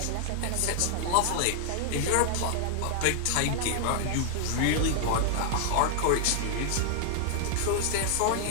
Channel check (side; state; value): both; different; correlation 0.00